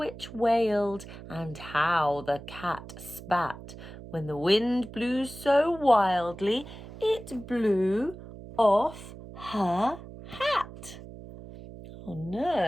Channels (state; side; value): noise; right; hum, 14 dB below the sound